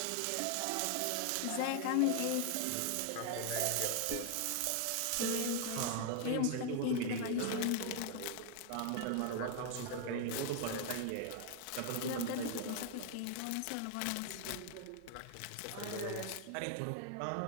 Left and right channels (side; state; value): both; different; correlation 0.00